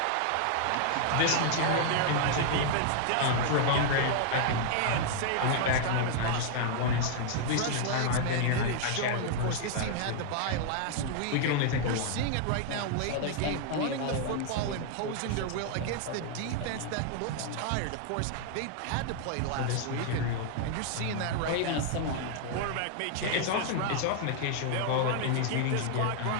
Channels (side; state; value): both; different; correlation 0.00